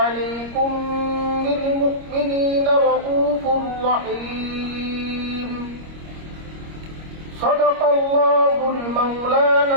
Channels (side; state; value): left; late; 25 ms